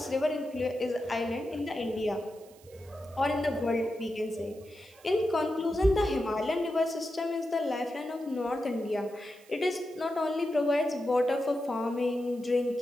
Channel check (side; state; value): right; noise; hiss, 26 dB below the sound